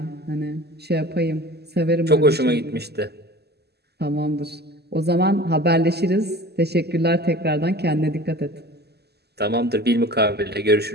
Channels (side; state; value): left; late; 0.47 ms